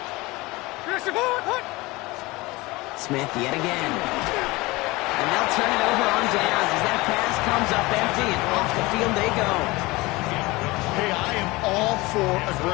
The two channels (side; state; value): right; quieter; 22.0 dB